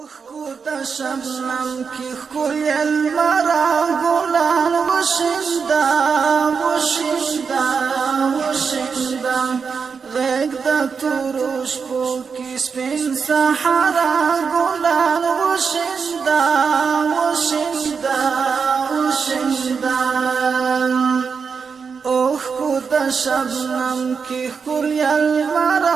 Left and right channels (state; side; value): quieter; left; 5.7 dB